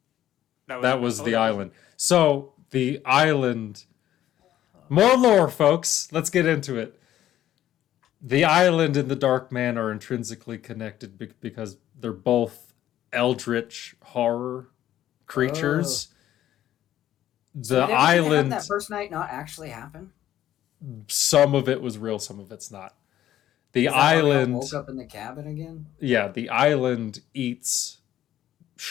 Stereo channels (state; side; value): quieter; right; 12.4 dB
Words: That was oh, the that island. So the island. More lore, folks. Let's get into it. The island and the Dark Man are intrinsically connected because they're both eldritch horror creatures. So The did everything island, that first night not actually happen? some of it was real, some of it's not. The Is that why we all island, woke up in the cabin again. yeah, the island eats